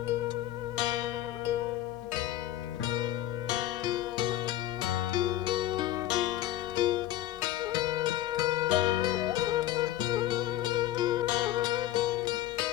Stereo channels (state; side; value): quieter; right; 13.5 dB